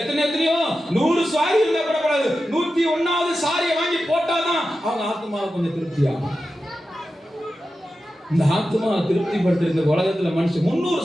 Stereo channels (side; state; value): both; normal; correlation 0.92